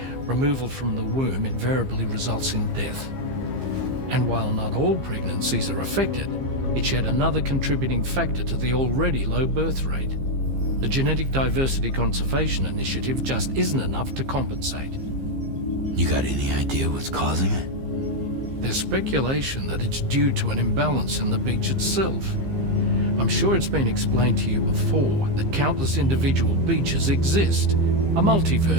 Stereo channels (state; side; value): late; left; 15 ms